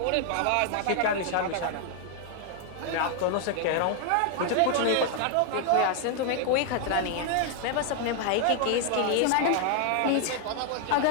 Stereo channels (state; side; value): different; both; correlation 0.00